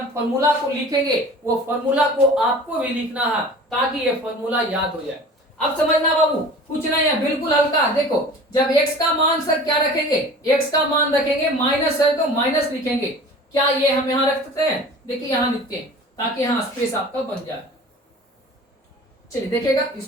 फॉर्मूला को लिखेंगे वो फॉर्मूला को आपको भी लिखना है ताकि ये फॉर्मूला याद हो जाए। अब समझना बाबू, कुछ नहीं है, बिल्कुल हल्का। देखो, जब x का मान सर क्या रखेंगे? x का मान रखेंगे माइनस है तो माइनस लिखेंगे। क्या ये हम यहाँ रख सकते हैं? देखिए यहाँ लिखते हैं ताकि यहाँ स्पेस आपका बन जाए। चलिए देखिएगा,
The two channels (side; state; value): both; normal; correlation 0.41